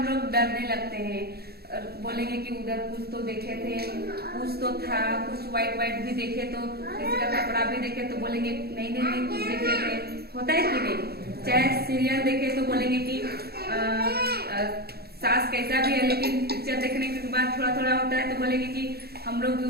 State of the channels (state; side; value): late; left; 0.46 ms